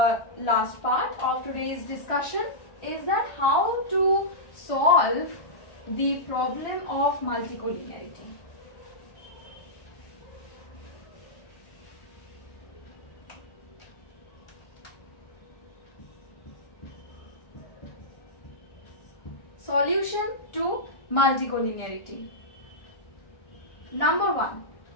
last part of today's discussion is that how to solve the problem of multicollinearity. solution to multicollinearity. Number 1,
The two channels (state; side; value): late; right; 1.4 ms